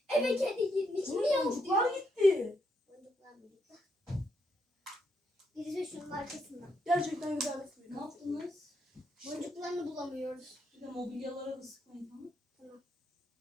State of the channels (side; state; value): both; normal; correlation 0.78